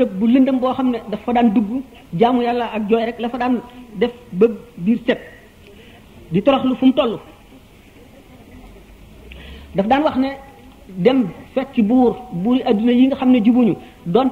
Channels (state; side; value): identical; both; correlation 1.00